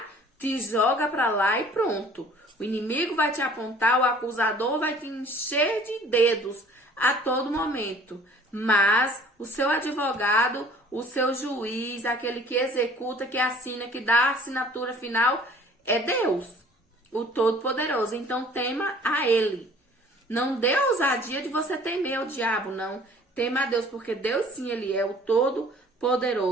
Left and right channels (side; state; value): both; normal; correlation 0.52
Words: te joga para lá e pronto. O inimigo vai te apontar, o acusador vai te encher de dedos a todo momento. Mas o seu advogado, o seu juiz, aquele que executa, que assina, que dá a assinatura final, é Deus, o Todo-Poderoso. Então tema a Ele. Não dê ousadia de você temer o diabo, não. Tema a Deus, porque Deus sim, Ele é o